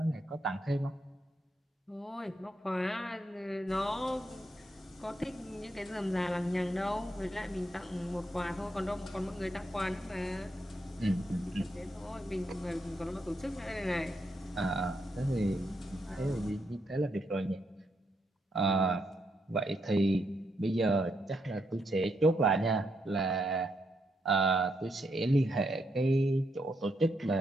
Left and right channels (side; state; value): both; normal; correlation 0.79